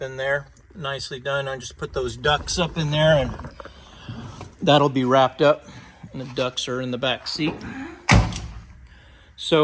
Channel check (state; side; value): identical; both; correlation 1.00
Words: in there. Nicely done. I just put those ducts up in there, and that'll be wrapped up. And the ducts are in the back seat.